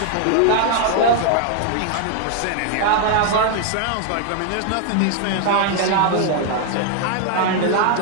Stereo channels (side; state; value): both; different; correlation 0.00